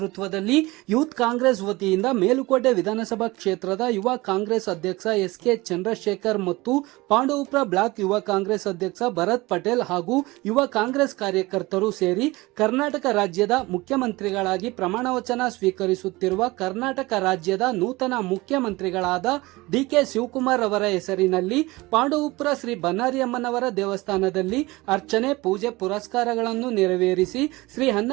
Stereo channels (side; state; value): left; quieter; 21.3 dB